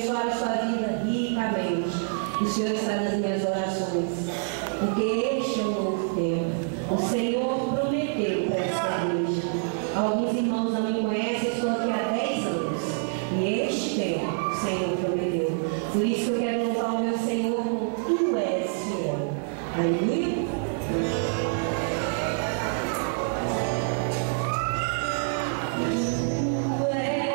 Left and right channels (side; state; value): left; silent; 60 dB below the other